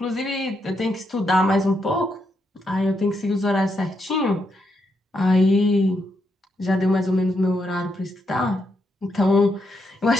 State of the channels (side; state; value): both; normal; correlation 0.80